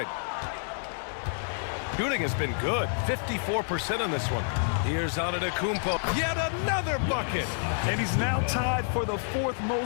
Shooting has been good. 54% on this one. Here's Antetokounmpo. Yet another bucket. And he's now tied for the fourth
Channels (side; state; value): right; silent; 55 dB below the other